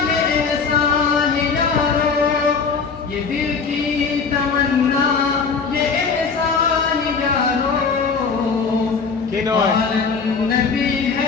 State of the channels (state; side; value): quieter; right; 5.3 dB